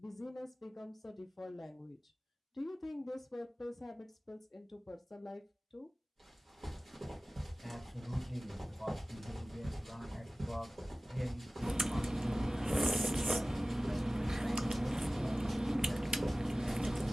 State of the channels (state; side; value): normal; both; correlation 0.97